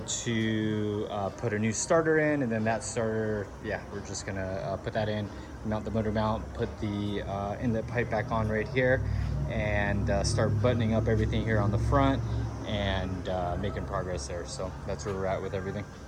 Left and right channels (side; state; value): both; identical; correlation 1.00